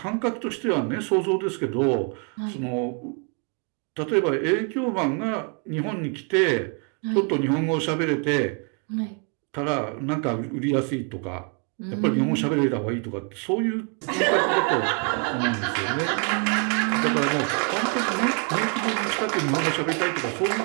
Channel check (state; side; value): quieter; left; 38.5 dB